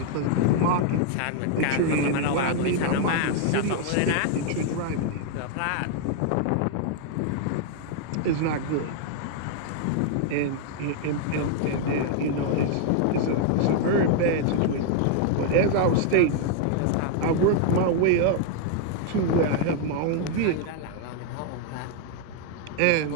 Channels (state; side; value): different; both; correlation 0.00